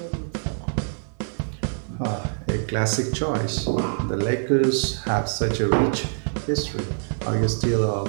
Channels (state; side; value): silent; left; digital silence